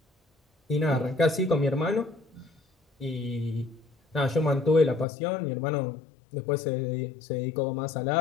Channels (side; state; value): right; drops out; at 5.1 s